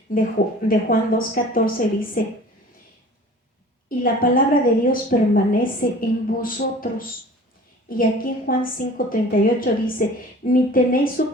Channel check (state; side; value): normal; both; correlation 0.44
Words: de Juan 2:14, dice, y la palabra de Dios permanece en vosotros. Y aquí en Juan 5:38 dice, ni tenéis su